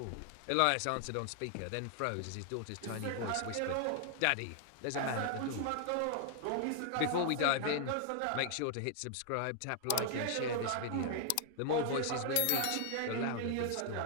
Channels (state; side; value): different; both; correlation 0.00